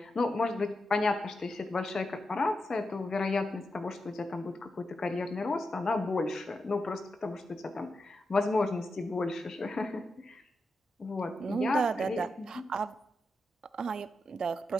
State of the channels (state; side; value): normal; both; correlation 0.87